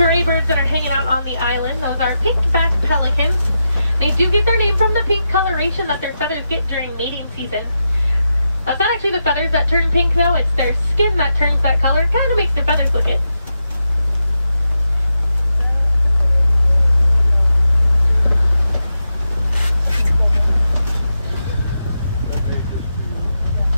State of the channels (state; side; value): inverted; both; correlation -0.87